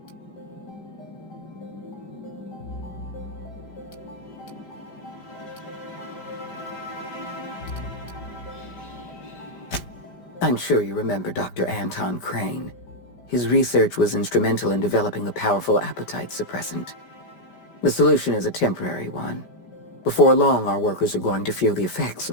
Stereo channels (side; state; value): right; late; 5.1 ms